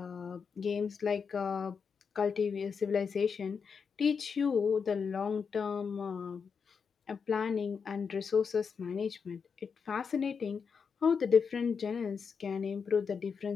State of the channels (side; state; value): right; quieter; 6.0 dB